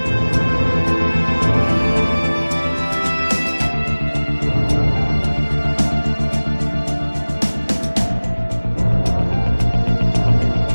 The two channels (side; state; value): both; inverted; correlation -1.00